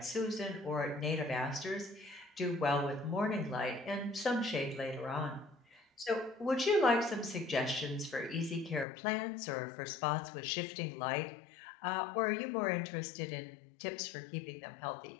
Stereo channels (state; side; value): drops out; right; at 8.8 s